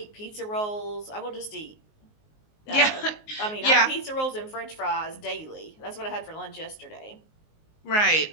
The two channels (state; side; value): late; right; 19 ms